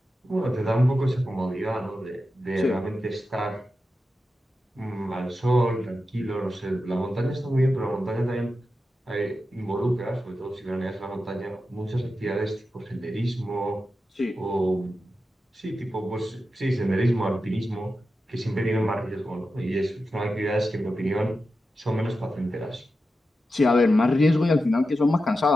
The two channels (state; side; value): normal; both; correlation 0.90